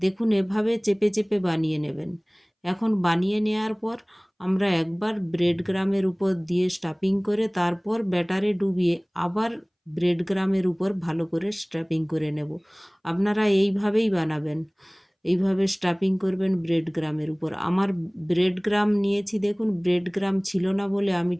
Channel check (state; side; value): identical; both; correlation 1.00